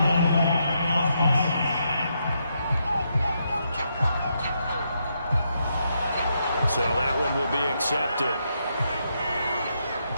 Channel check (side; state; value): both; inverted; correlation -0.80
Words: So that one will be accepted.